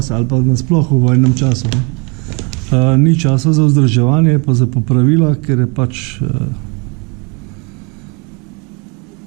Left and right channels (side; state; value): left; quieter; 31.2 dB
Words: ali pa nasploh v vojnem času. Ni časa za vzdrževanje, pa za popravila, ker je pač